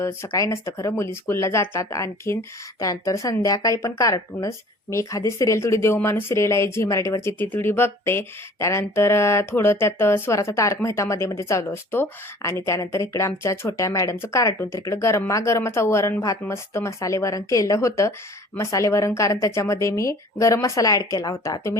सकाळी नसतं खरं, मुली स्कूलला जातात. आणखीन त्यानंतर संध्याकाळी पण कार्टूनच. मी एखादी सिरियल, थोडी देवमाणूस सिरियल आहे झी मराठीवरची, ती थोडी बघते. त्यानंतर थोडं त्यात स्वराचा तारक मेहता मध्ये मध्ये चालू असतो. आणि त्यानंतर इकडे आमच्या छोट्या मॅडमचं कार्टून. तर इकडे गरमागरमाचा वरण भात, मस्त मसाले वरण केलं होतं. मसाले वरण कारण त्याच्यामध्ये मी गरम मसाला ॲड केला होता.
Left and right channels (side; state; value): both; normal; correlation 0.48